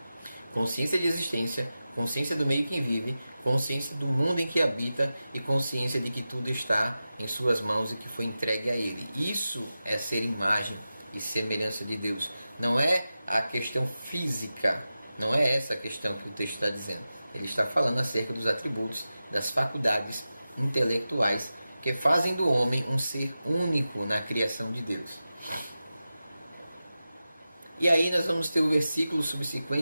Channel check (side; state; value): both; inverted; correlation -0.93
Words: consciência de existência, consciência do meio que vive, consciência do mundo em que habita e consciência de que tudo está em suas mãos e que foi entregue a ele. Isso é ser imagem e semelhança de Deus. Não é a questão física, não é essa a questão que o texto está dizendo. Ele está falando acerca dos atributos, das faculdades intelectuais que fazem do homem um ser único na criação de Deus. E aí nós vamos ter o versículo